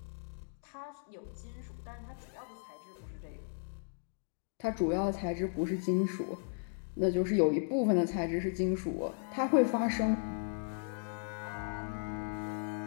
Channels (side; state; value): right; silent; digital silence